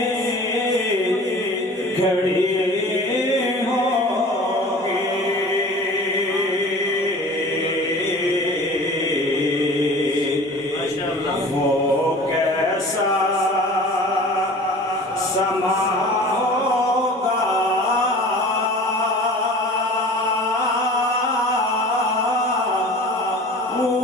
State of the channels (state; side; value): normal; both; correlation 0.41